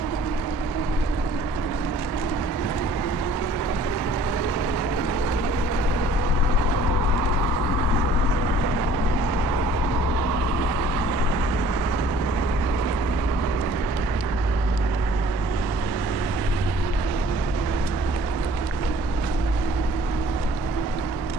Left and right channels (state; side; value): late; right; 1.2 ms